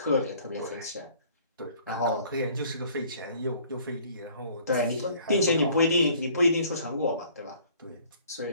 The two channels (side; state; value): both; inverted; correlation -0.55